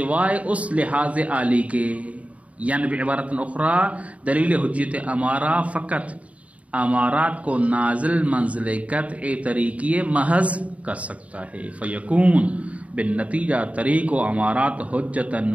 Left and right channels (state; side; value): late; left; 0.066 ms